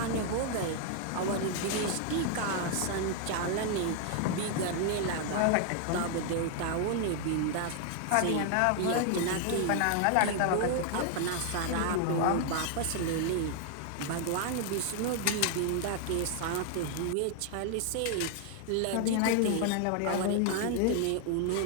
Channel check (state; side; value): different; both; correlation 0.00